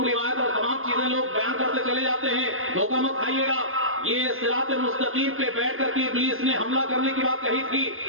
روایت اور تمام چیزیں لوگ بیان کرتے چلے جاتے ہیں، دھوکہ مت کھائیے گا. یہ صراط مستقیم پہ بیٹھ کر کے ابلیس نے حملہ کرنے کی بات کہی تھی،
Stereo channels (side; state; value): left; late; 0.60 ms